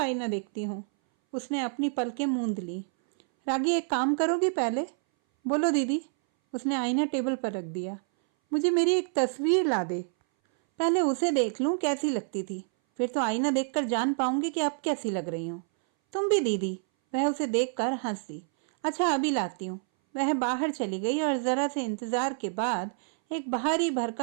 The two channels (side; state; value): left; silent; 59 dB below the other